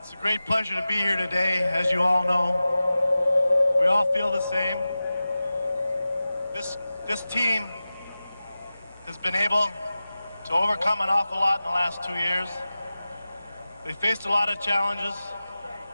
a great pleasure to be here today, as you all know. We all feel the same. This team has been able to overcome an awful lot in the last 2 years. They faced a lot of challenges,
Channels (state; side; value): inverted; both; correlation -0.95